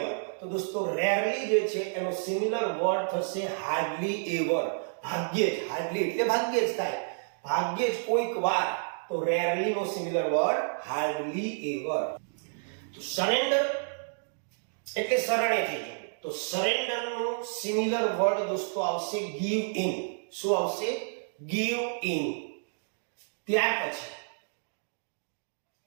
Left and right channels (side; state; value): left; silent; digital silence